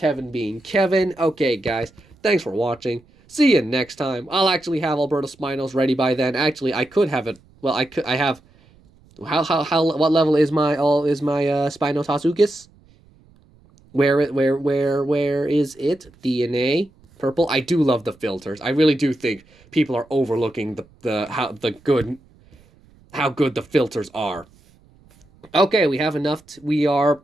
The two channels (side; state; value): right; noise; rumble, 29 dB below the sound